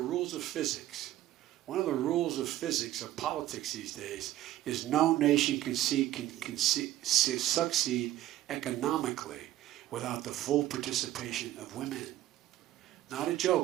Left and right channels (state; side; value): quieter; left; 14.1 dB